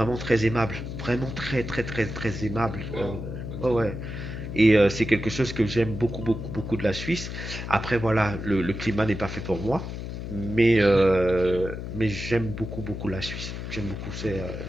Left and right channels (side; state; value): left; noise; hum, 7 dB below the sound